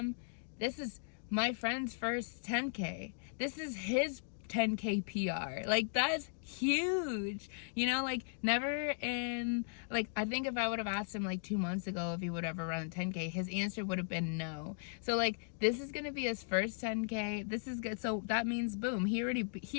this is my friend's first 10K. This is his 10K PR. Like, that's huge. You know, like, never in, like, I think if I would have asked him like 2 months ago if he would ever run a 10K, his answer would have been no. So like, this is gonna be his first 10K. This is good. So that means, boom, he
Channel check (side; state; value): right; silent; digital silence